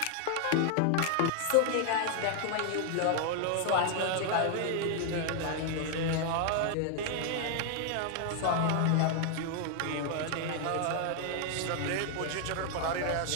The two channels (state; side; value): different; both; correlation 0.00